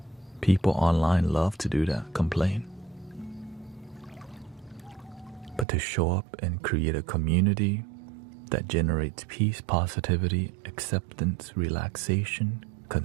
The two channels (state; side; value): drops out; left; at 5.7 s